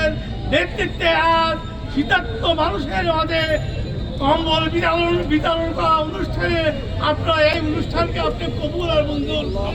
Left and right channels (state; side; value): identical; both; correlation 1.00